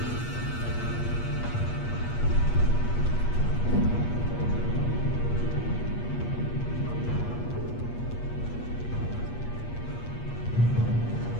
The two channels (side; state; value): right; late; 8.4 ms